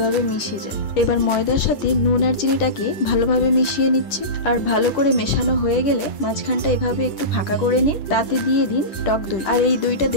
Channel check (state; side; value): late; right; 10 ms